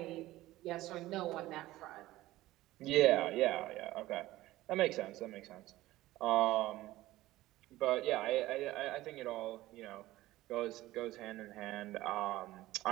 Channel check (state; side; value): quieter; left; 16.7 dB